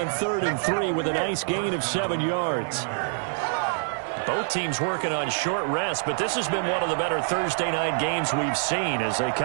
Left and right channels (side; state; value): left; silent; digital silence